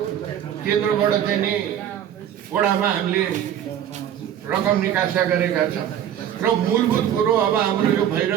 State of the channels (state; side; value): quieter; left; 10.2 dB